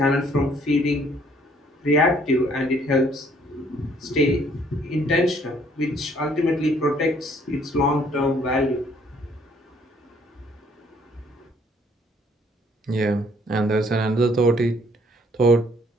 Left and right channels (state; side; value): normal; both; correlation 0.63